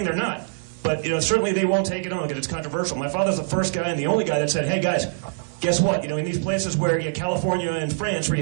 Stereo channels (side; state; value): left; silent; digital silence